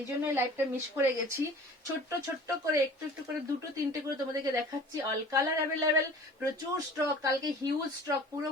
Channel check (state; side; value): normal; both; correlation 0.44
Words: জন্যই লাইভটা মিস করে গেছি। ছোট্ট ছোট্ট করে একটু একটু করে 2-3টে করে তোমাদেরকে দেখাচ্ছি। অল কালার অ্যাভেলেবেল, প্রচুর স্টক, কালকে হিউজ স্টক, পুরো